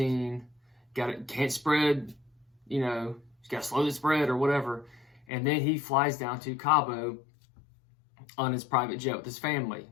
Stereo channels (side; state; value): right; drops out; at 5.2 s